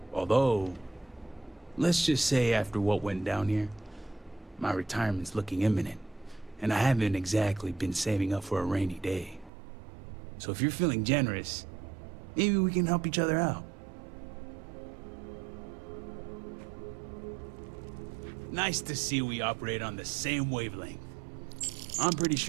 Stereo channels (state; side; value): drops out; left; at 9.5 s